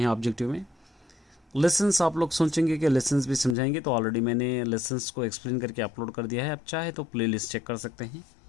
ऑब्जेक्टिव में। लेसन्स आप लोग सोचेंगे कि लेसन्स भी समझाएंगे, तो ऑलरेडी मैंने लेसन्स को एक्सप्लेन करके अपलोड कर दिया है। आप चाहे तो प्लेलिस्ट चेक कर सकते हैं।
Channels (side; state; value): right; drops out; at 3.6 s